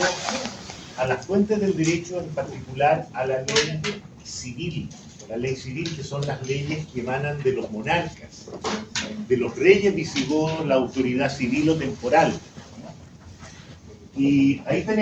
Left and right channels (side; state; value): both; identical; correlation 1.00